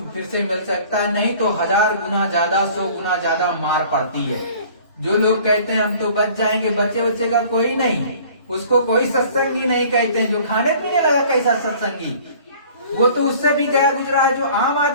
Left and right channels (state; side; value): inverted; both; correlation -0.50